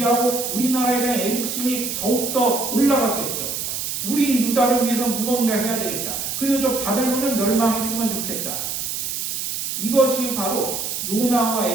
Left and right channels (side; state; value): right; noise; hiss, 3 dB below the sound